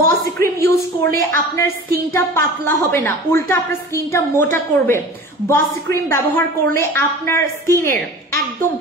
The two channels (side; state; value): both; normal; correlation 0.39